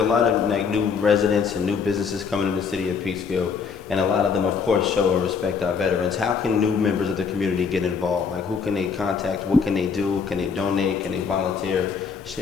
lot of new residents and new businesses coming in the city of Peekskill, and a lot of them, of course, show and respect our veterans. How can new members of the community get involved? Like, who can they contact? What can they do? Can they donate? Can they volunteer?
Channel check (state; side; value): quieter; right; 5.9 dB